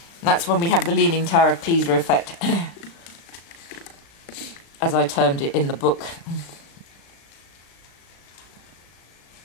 And that's when we have the leaning Tower of Pisa effect. as I termed it in the book.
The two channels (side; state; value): right; late; 36 ms